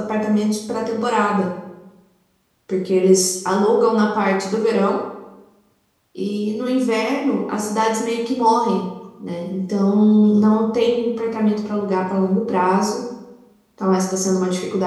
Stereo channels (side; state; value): both; identical; correlation 1.00